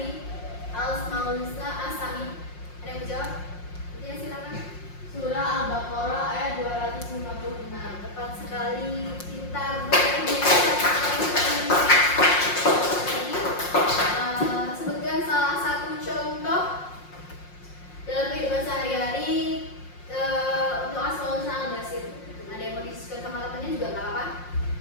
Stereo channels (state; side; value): late; right; 5.6 ms